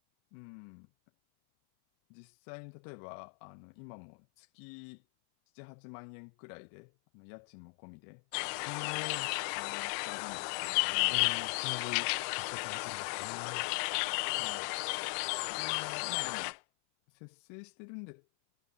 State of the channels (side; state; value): right; silent; 52 dB below the other